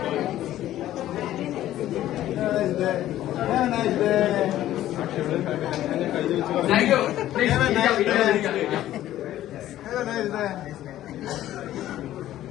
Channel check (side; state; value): right; quieter; 13.4 dB